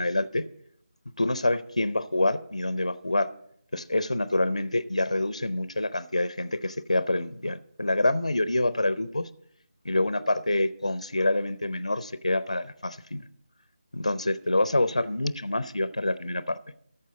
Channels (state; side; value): inverted; both; correlation -0.93